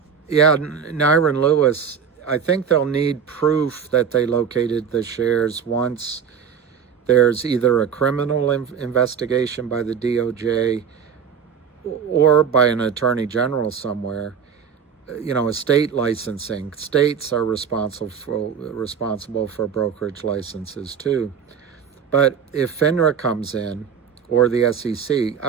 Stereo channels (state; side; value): quieter; left; 7.1 dB